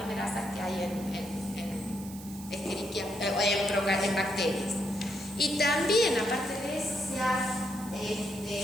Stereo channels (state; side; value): noise; right; hiss, 16 dB below the sound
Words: que hay en bacterias. Y también, aparte de eso, se ha